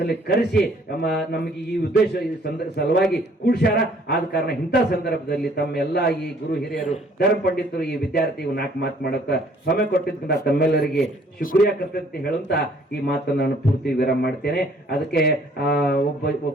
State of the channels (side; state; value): both; normal; correlation 0.60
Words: ಕರೆಸಿ ನಮಗೆ ಈ ಉದ್ದೇಶ ಈ ಸಲುವಾಗಿ ಕೂಡ್ಸ್ಯಾರ. ಆದ ಕಾರಣ ಇಂಥ ಸಂದರ್ಭದಲ್ಲಿ ತಮ್ಮೆಲ್ಲ ಈ ಗುರು ಹಿರಿಯರು ಧರ್ಮ ಪಂಡಿತರು ಈ ವಿದ್ಯಾರ್ಥಿಗಳು 4 ಮಾತು ಮಾಡಕ ಸಮಯ ಕೊಟ್ಟಿದ್ದ ತಮ್ಮೆಲ್ಲರಿಗೆ ಶುಕ್ರಿಯಾ ಕರ್ತಂತೆ ಹೇಳುತ್ತಾ ಈ ಮಾತನ್ನು ನಾನು ಪೂರ್ತಿ ವಿರಾಮ ಮಾಡ್ತೇನೆ. ಅದಕ್ಕೆ ಒಬ್ಬ